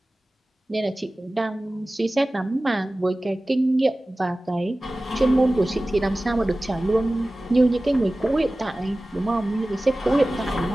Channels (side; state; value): both; normal; correlation 0.97